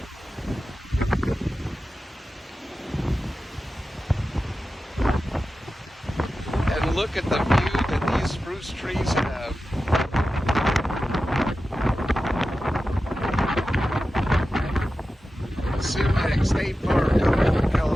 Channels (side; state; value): both; normal; correlation 0.93